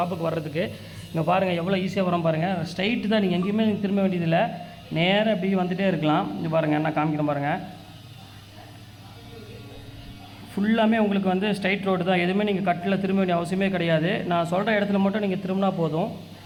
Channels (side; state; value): both; identical; correlation 1.00